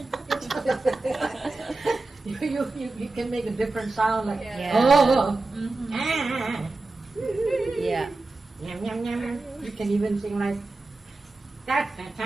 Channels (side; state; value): left; quieter; 3.3 dB